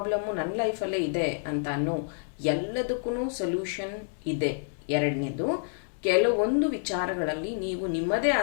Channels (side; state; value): right; silent; 59 dB below the other